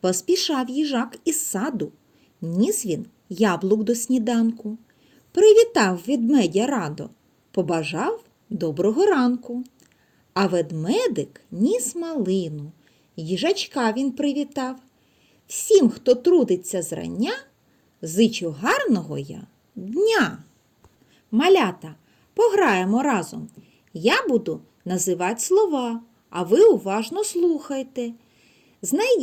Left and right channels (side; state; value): both; identical; correlation 1.00